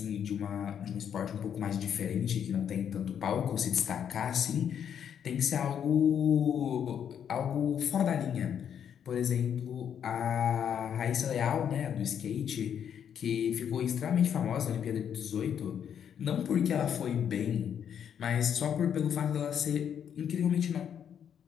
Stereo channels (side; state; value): right; quieter; 8.6 dB